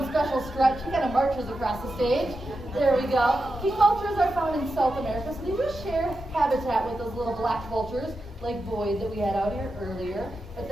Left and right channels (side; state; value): both; normal; correlation 0.89